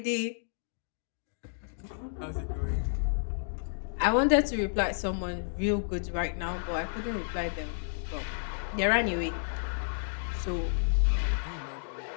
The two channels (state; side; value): silent; right; digital silence